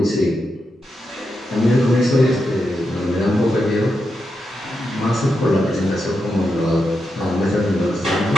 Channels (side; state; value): both; normal; correlation 0.86